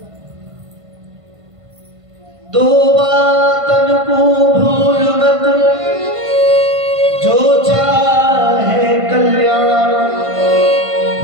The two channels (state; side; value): late; left; 1.5 ms